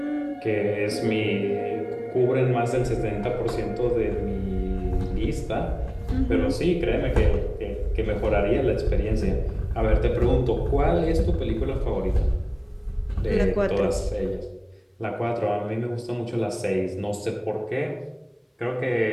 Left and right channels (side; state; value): both; identical; correlation 1.00